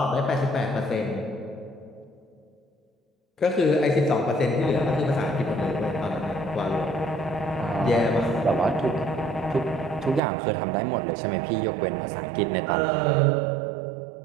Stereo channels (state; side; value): drops out; left; at 10.2 s